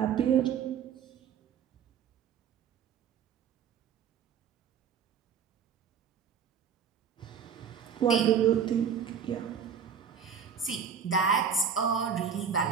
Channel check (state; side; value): quieter; left; 7.3 dB